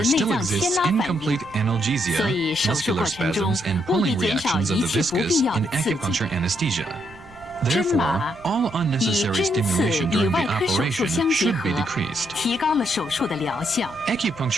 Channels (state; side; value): noise; right; rumble, 24 dB below the sound